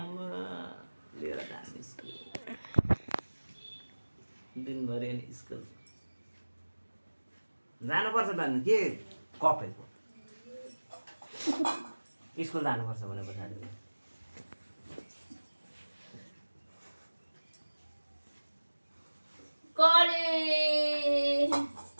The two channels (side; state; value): both; inverted; correlation -1.00